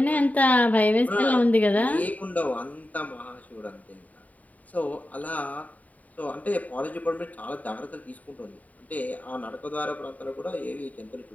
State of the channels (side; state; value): right; late; 0.072 ms